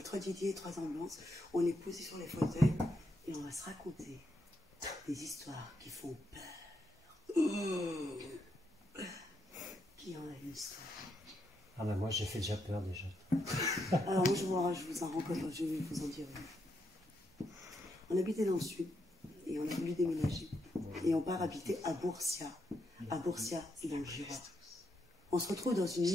3 Didier, 3 ambulances. On est posé sur les fauteuils et on va se raconter des histoires qui font peur. Qui en a une histoire? Ah ben moi j'ai fait déjà peur déjà. Alors moi je vous en rencontre, je vais vous en dire. On habitait dans le sud et on a voulu déménager. Et on part habiter à Bourcia. À Bourcia, c'est dans le Jura. On se retrouve dans une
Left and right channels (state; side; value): normal; both; correlation 0.80